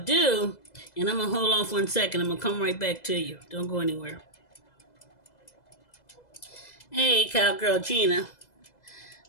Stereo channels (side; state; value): right; late; 2.0 ms